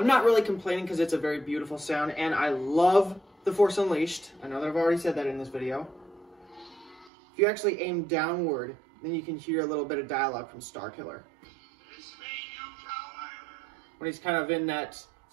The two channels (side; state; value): left; drops out; at 7.1 s